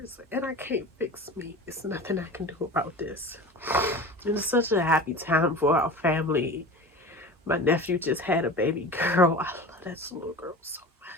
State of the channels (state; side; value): normal; both; correlation 0.33